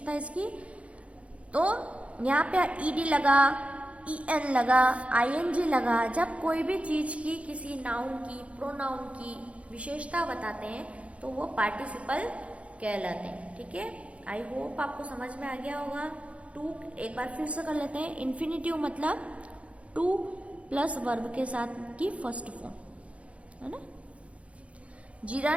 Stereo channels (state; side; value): late; left; 0.063 ms